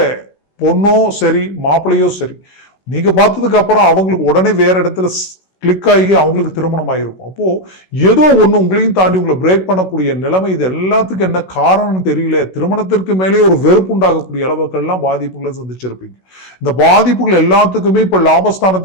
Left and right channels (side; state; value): right; late; 16 ms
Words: பொண்ணோ சரி மாப்பிள்ளையோ சரி, நீங்க பார்த்ததுக்கு அப்புறம் அவங்களுக்கு உடனே வேற இடத்துல கிளிக் ஆகி அவங்களுக்கு திருமணம் ஆகிருக்கும். அப்போ ஏதோ ஒண்ணு உங்களையும் தாண்டி உங்களை பிரேக் பண்ணக்கூடிய நிலைமை. இது எல்லாத்துக்கும் என்ன காரணம்னு தெரியல. திருமணத்திற்கு மேலே ஒரு வெறுப்பு உண்டாகக்கூடிய அளவுக்கெல்லாம் பாதிப்புகளை சந்திச்சிருப்பீங்க. இந்த பாதிப்புகள் எல்லாத்துக்குமே இப்ப